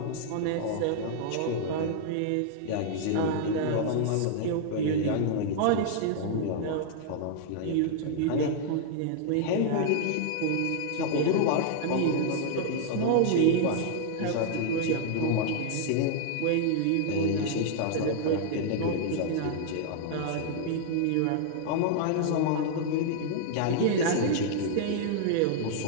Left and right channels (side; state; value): both; different; correlation -0.01